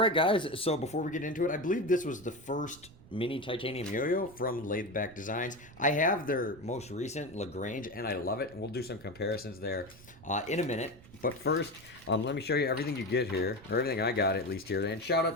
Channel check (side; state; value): right; noise; rumble, 22 dB below the sound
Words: guys, so before we get into it, I believe this was the first mini titanium yo-yo from Lathed Designs. I have their most recent Lagrange, and I love it, and we'll do some comparisons there in a minute. But first, let me show you everything you get here, or everything I got at least here. And shout